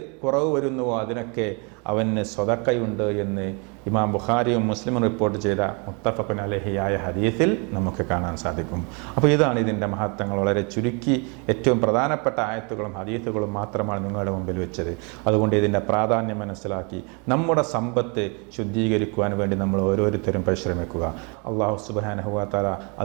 കുറവ് വരുന്നുവോ അതിനൊക്കെ അവന് സ്വതക്കയുണ്ട് എന്ന് ഇമാം ബുഖാരിയും മുസ്ലിമും റിപ്പോർട്ട് ചെയ്ത മുത്തഫഖുൻ അലൈഹിയായ ഹദീസിൽ നമുക്ക് കാണാൻ സാധിക്കും. അപ്പോൾ ഇതാണ് ഇതിൻ്റെ മഹത്വങ്ങൾ. വളരെ ചുരുക്കി ഏറ്റവും പ്രധാനപ്പെട്ട ആയത്തുകളും ഹദീസുകളും മാത്രമാണ് നിങ്ങളുടെ മുമ്പിൽ വെച്ചത്. അതുകൊണ്ട് ഇതിൻ്റെ പ്രാധാന്യം മനസ്സിലാക്കി നമ്മുടെ സമ്പത്ത് ശുദ്ധീകരിക്കുവാൻ വേണ്ടി നമ്മൾ ഓരോരുത്തരും പരിശ്രമിക്കുക. അള്ളാഹു സുബ്ഹാനഹു വ തആല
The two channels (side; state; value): left; quieter; 33.2 dB